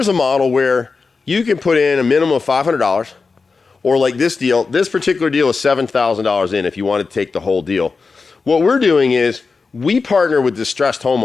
a model where you can put in a minimum of $500, or like this deal, this particular deal is $7,000 in if you want to take the whole deal. What we're doing is we partner with distressed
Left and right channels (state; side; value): quieter; right; 4.5 dB